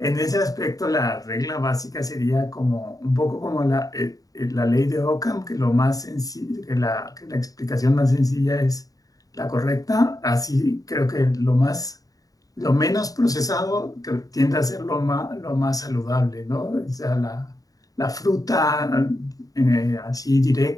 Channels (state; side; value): late; right; 0.17 ms